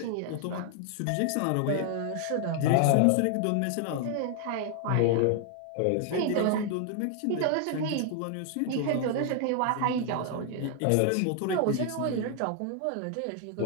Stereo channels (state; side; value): different; both; correlation 0.00